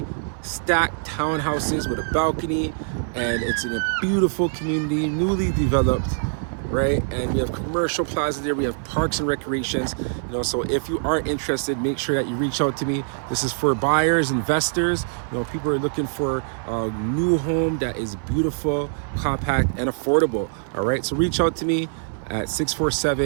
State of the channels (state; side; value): silent; left; 58 dB below the other